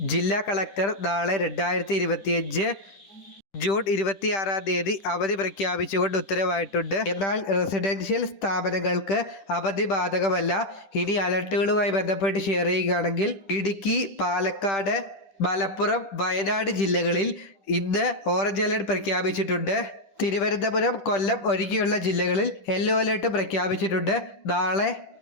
ജില്ലാ കളക്ടർ നാളെ 2025 ജൂൺ 26-ാം തീയതി അവധി പ്രഖ്യാപിച്ചുകൊണ്ട് ഉത്തരവായിട്ടുണ്ട്. എന്നാൽ റെസിഡൻഷ്യൽ സ്ഥാപനങ്ങൾക്ക് അവധി ബാധകമല്ല. ഇനി അലർട്ടുകളുമായി ബന്ധപ്പെട്ട് ഷെയർ ചെയ്യുകയാണെങ്കിൽ ഇടുക്കി, പാലക്കാട്, മലപ്പുറം, വയനാട് ജില്ലകളിൽ ഇന്ന് ഓറഞ്ച് അലർട്ട് പ്രഖ്യാപിച്ചിട്ടുണ്ട്. തിരുവനന്തപുരം, കൊല്ലം ഒഴികെയുള്ള ജില്ലകളിൽ യെല്ലോ അലർട്ട് പ്രഖ്യാപിച്ചിട്ടുണ്ട്. നാളെ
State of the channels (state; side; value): late; right; 10 ms